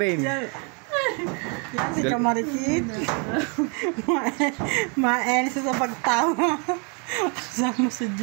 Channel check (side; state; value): left; quieter; 35.6 dB